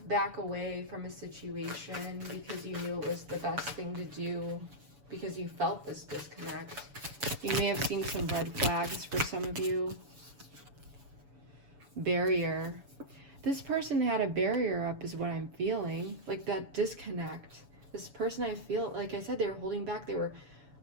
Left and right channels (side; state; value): left; late; 7.0 ms